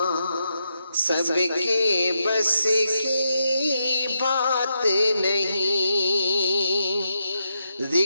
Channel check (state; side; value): inverted; both; correlation -0.82